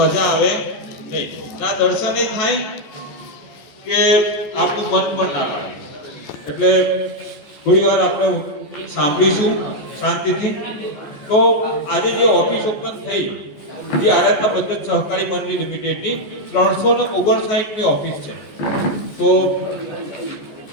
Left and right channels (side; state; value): right; late; 14 ms